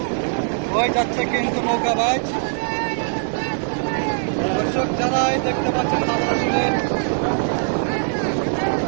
হয়ে যাচ্ছে কিন্তু নৌকাবাজ। দর্শক যারা দেখতে পাচ্ছেন তারা আসলে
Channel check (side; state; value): left; silent; digital silence